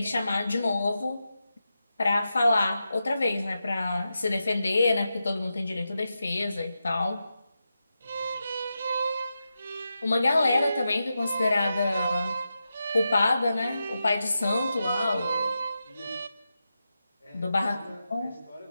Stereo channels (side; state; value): both; inverted; correlation -0.89